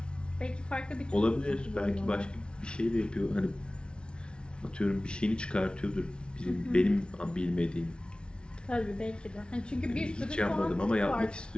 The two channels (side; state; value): right; late; 0.056 ms